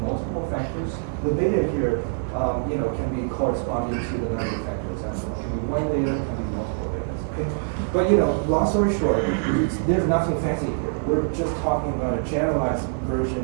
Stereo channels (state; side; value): silent; left; digital silence